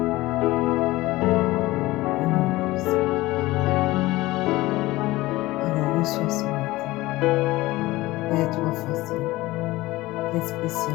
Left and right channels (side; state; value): right; quieter; 18.8 dB